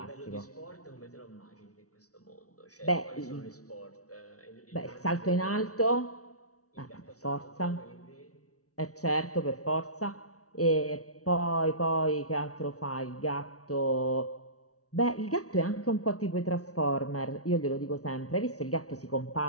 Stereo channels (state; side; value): late; right; 0.66 ms